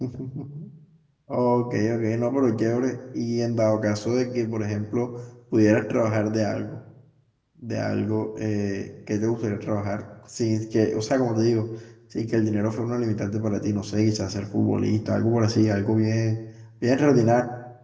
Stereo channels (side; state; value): both; identical; correlation 1.00